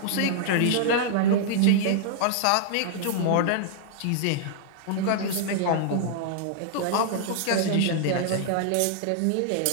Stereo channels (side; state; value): both; different; correlation -0.01